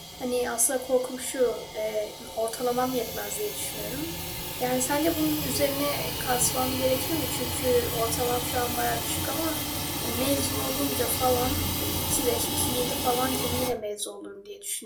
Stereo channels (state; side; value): identical; both; correlation 1.00